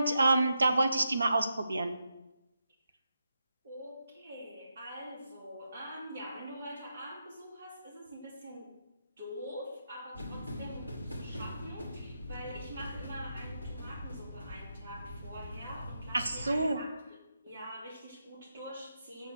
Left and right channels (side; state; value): both; inverted; correlation -0.85